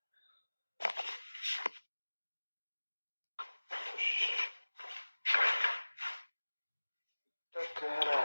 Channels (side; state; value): both; inverted; correlation -1.00